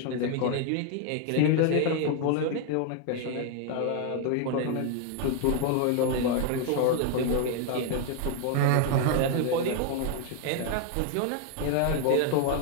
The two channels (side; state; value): both; different; correlation 0.00